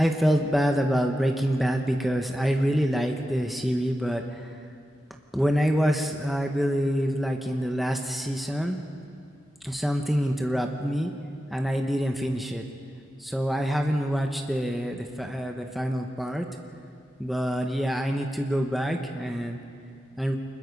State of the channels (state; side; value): normal; both; correlation 0.91